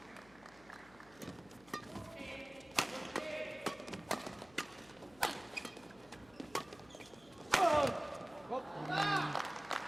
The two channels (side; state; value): left; noise; hum, 25 dB below the sound